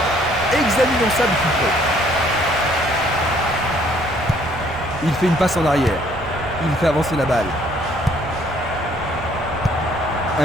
Examinons ça de plus près. Il fait une passe en arrière. Il fait avancer la balle.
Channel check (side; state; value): right; noise; rumble, 15 dB below the sound